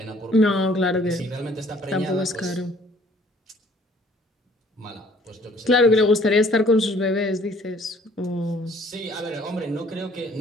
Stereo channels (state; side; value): normal; both; correlation 0.58